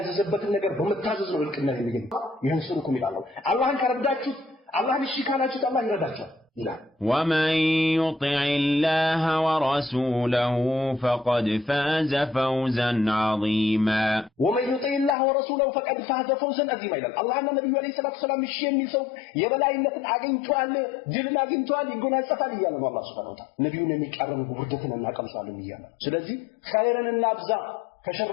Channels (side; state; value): right; drops out; at 15.2 s